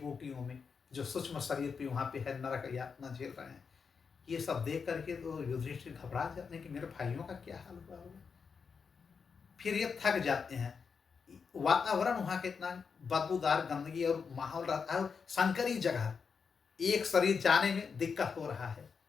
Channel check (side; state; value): right; quieter; 5.8 dB